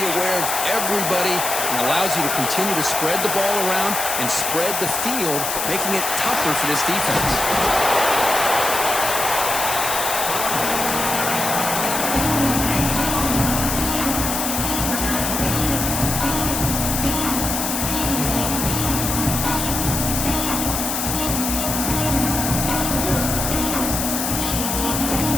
aware of everybody, and allows you to continue to spread the ball around and spread the field, making it tougher for this defense.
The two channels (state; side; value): noise; left; hiss, 2 dB below the sound